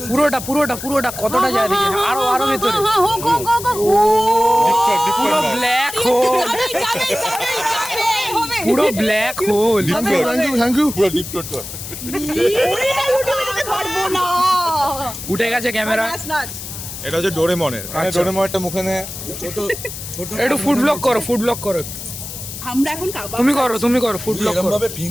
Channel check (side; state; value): left; noise; hiss, 10 dB below the sound